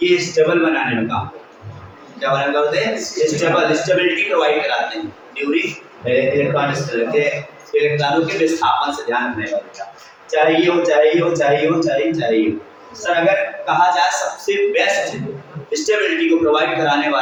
ये स्टेबल बनाने में काम क्या बना करते हैं? स्टेबिलिटी प्रोवाइड कराते हैं ड्यूरिंग इलेक्ट्रॉनों के विस्थापन से। ध्यान रखने का बेटा चाहिए हो। सर अगर कहा जाए सबसे बेस्ट स्टेबिलिटी को प्रोवाइड कराने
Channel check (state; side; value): identical; both; correlation 1.00